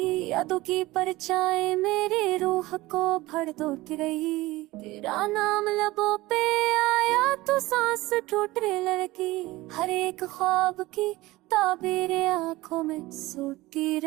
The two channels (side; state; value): left; quieter; 19.2 dB